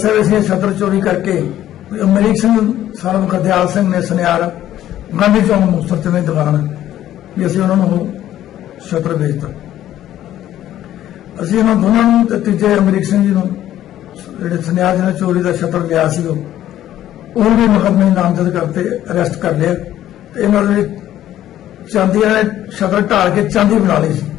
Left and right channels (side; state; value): right; quieter; 12.5 dB